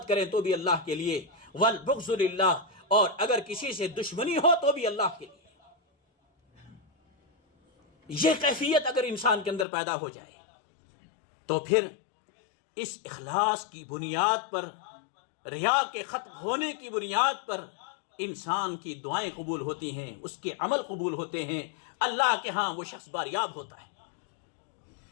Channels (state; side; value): drops out; right; at 9.7 s